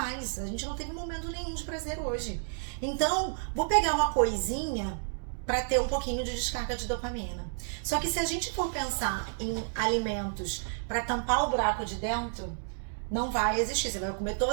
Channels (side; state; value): left; silent; digital silence